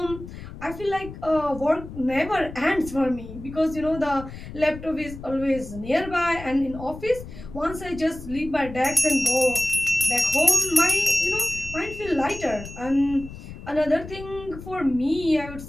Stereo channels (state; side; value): noise; left; rumble, 13 dB below the sound